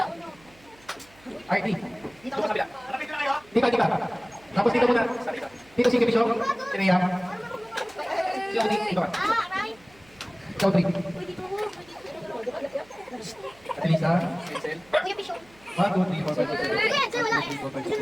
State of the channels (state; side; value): noise; right; hum, 28 dB below the sound